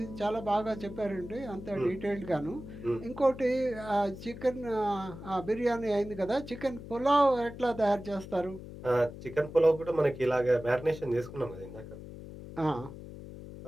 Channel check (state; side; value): noise; left; hum, 13 dB below the sound